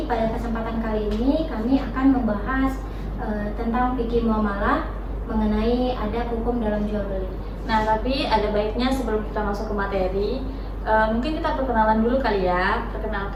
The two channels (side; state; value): both; identical; correlation 1.00